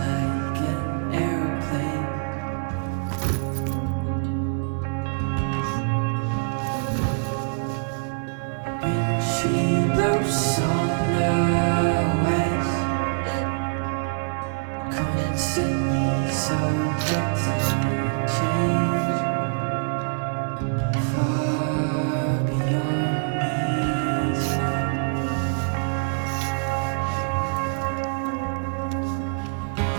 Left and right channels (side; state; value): left; silent; 62 dB below the other